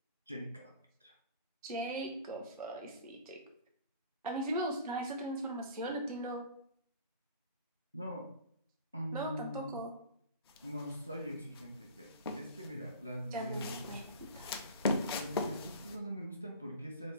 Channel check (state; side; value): inverted; both; correlation -0.41